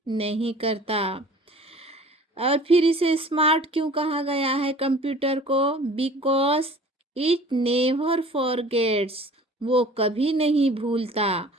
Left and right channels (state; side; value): normal; both; correlation 0.46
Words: नहीं करता। और फिर इसे स्मार्ट क्यों कहा गया है कंप्यूटर को? बिकॉज इट नेवर फॉरगेट्स, वो कभी नहीं भूलता।